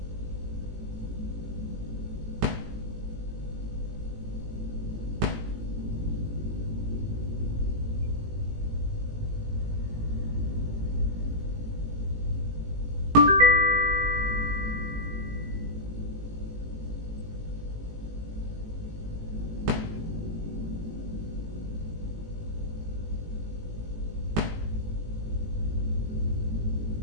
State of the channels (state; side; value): late; left; 18 ms